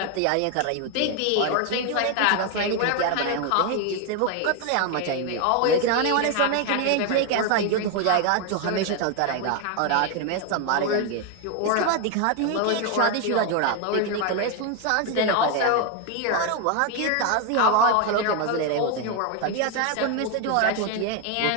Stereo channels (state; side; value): different; both; correlation 0.01